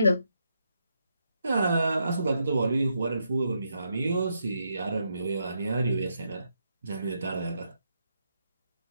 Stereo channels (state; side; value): inverted; both; correlation -0.81